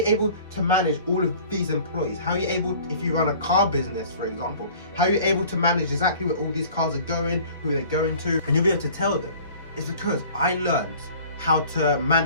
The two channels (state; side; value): inverted; both; correlation -0.48